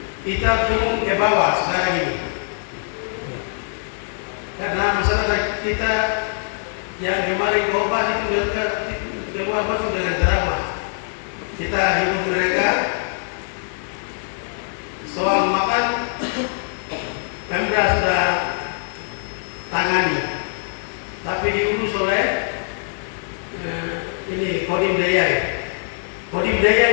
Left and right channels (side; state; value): right; silent; 64 dB below the other